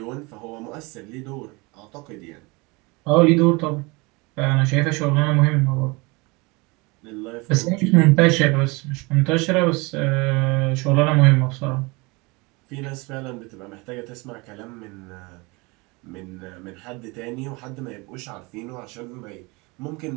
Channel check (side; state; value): left; quieter; 26.1 dB